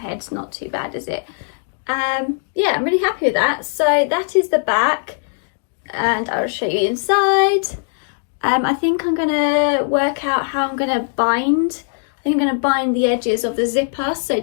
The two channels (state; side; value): silent; right; digital silence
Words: not too bad, is it? Yeah, I'm really happy with that. So that is the back, and I'll show you inside. I think I'm gonna work out how I'm gonna bind. I think I'm gonna bind the edges of the zipper so it